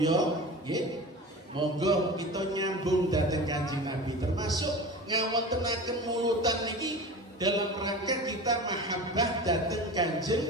nggih, monggo kita nyambung dhateng Kanjeng Nabi, termasuk ngawontenaken mulutan niki dalam rangka kita mahabbah dhateng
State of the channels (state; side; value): normal; both; correlation 0.33